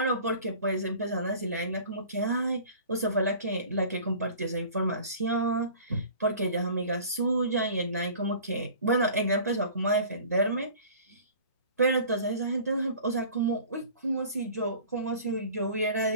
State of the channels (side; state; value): both; inverted; correlation -0.45